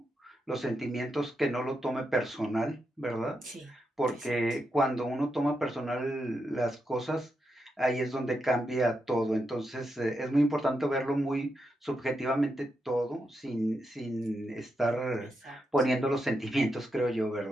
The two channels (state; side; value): normal; both; correlation 0.85